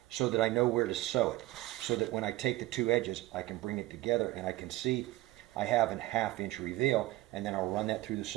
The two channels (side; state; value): left; quieter; 17.7 dB